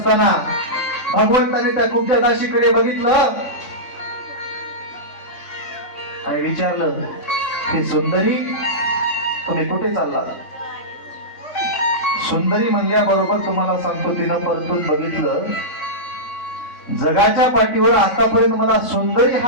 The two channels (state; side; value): late; right; 3.5 ms